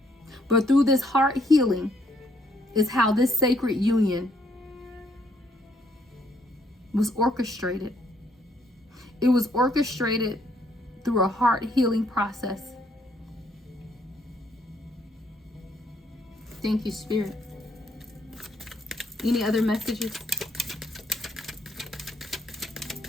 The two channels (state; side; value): normal; both; correlation 0.70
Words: But through this heart healing is how this sacred union was orchestrated. It was orchestrated through a heart healing process. Thank you, Spirit. Any other messages?